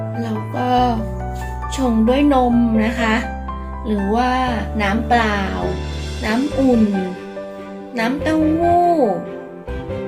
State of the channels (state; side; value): identical; both; correlation 1.00